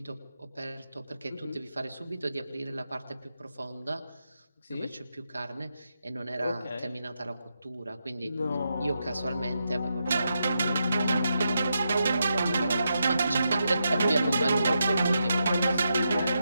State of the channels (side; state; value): both; inverted; correlation -0.84